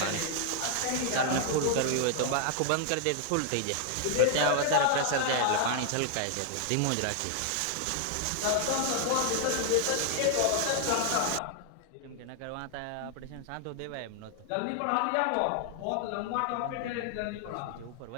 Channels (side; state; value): both; different; correlation 0.00